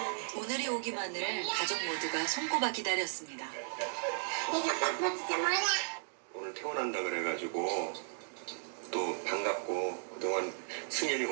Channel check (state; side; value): silent; left; digital silence